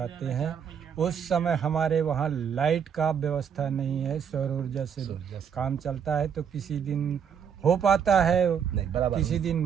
हैं उस समय हमारे वहाँ लाइट का व्यवस्था नहीं है, सौर ऊर्जा से काम चलता है, तो किसी दिन हो पाता है, किसी दिन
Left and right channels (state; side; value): quieter; left; 7.6 dB